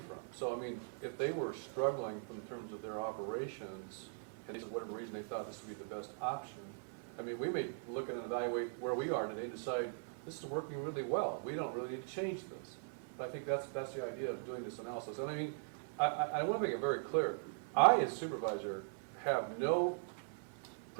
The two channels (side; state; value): left; silent; 51 dB below the other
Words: from? So, I mean, if they were struggling in terms of their operations, and for whatever reason they thought this would be the best option, I mean, we may look and evaluate where we are today and decide, this is working really well. We don't really need to change this. But I think that's the idea of doing this analysis. And I mean, I want to make it very clear. I, as supervisor, have no